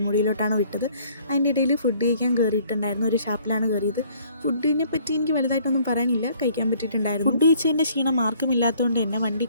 വിട്ടത്. അതിൻ്റെ ഇടയിൽ ഫുഡ് കഴിക്കാൻ കയറിയിട്ടുണ്ടായിരുന്നു. ഒരു ഷാപ്പിലാണ് കയറിയത്. ഫുഡിനെ പറ്റി എനിക്ക് വലുതായിട്ടൊന്നും പറയാനില്ല, കഴിക്കാൻ പറ്റിയിട്ടുണ്ടായിരുന്നു. ഫുഡ് കഴിച്ചതിൻ്റെ ക്ഷീണം മാർക്കുമില്ലാത്തതുകൊണ്ട് തന്നെ വണ്ടി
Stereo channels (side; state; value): both; inverted; correlation -0.59